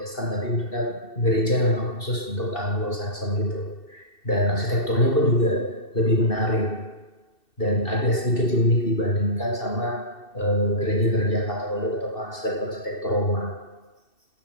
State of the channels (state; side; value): late; right; 2.7 ms